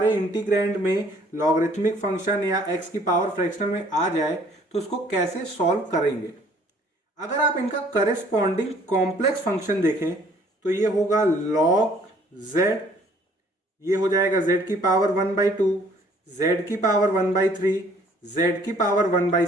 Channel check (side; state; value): both; normal; correlation 0.58